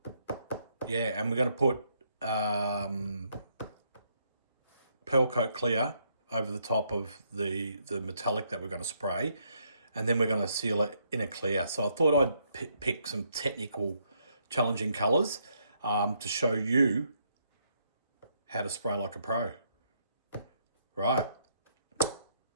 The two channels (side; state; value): both; inverted; correlation -0.73